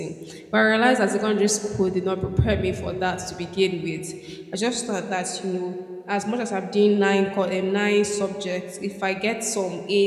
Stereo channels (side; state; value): both; identical; correlation 1.00